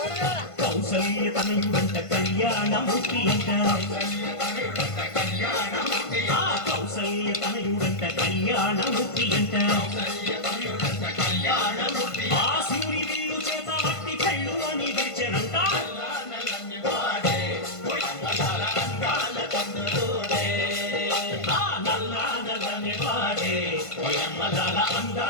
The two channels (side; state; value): right; late; 1.5 ms